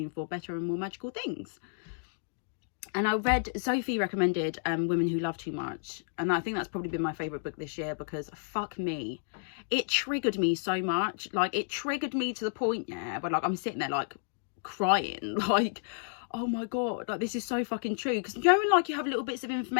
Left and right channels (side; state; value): right; silent; digital silence